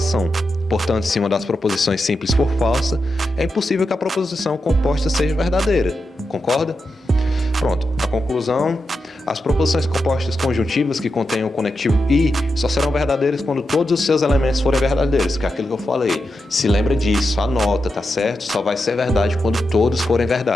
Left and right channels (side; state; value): both; normal; correlation 0.88